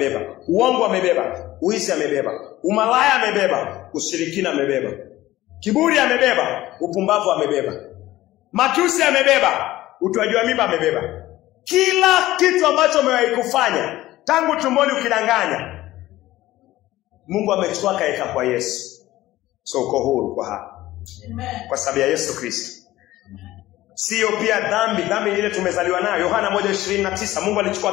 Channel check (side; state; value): right; quieter; 16.1 dB